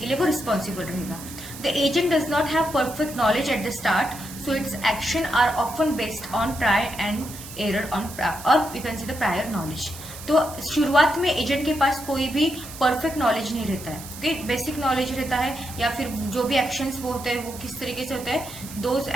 लिए वो रिस्पॉन्सिबल रहेगा. The agent does not have perfect knowledge at the start, so its action are often based on try and error on, और you can see the prior knowledge. तो शुरुआत में एजेंट के पास कोई भी परफेक्ट नॉलेज नहीं रहता है. ओके, बेसिक नॉलेज रहता है, या फिर जो भी एक्शंस वो होते हैं वो किस तरीके से होते हैं, those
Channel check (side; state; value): right; noise; hiss, 14 dB below the sound